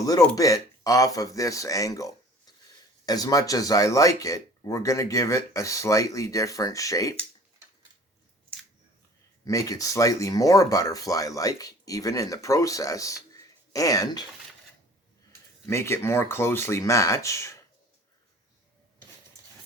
bit off of this angle. As much as I like it, we're going to give it a slightly different shape. Make it slightly more butterfly-like, even in the process, and make it more closely match.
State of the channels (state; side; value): normal; both; correlation 0.47